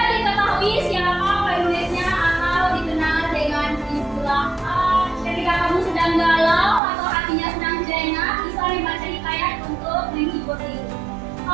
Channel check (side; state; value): left; drops out; at 6.8 s